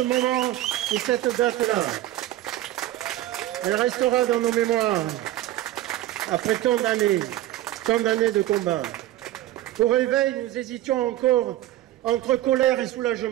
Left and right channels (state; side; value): quieter; left; 14.4 dB